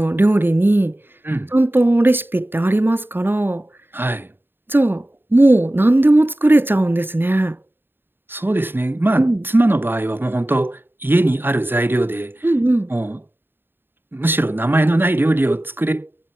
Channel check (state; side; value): late; left; 0.099 ms